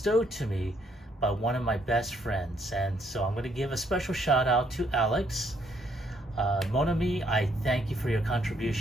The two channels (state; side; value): normal; both; correlation 0.70